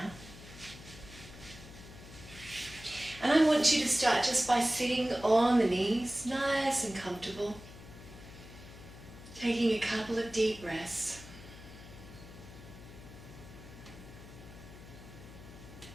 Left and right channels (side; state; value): left; noise; hum, 16 dB below the sound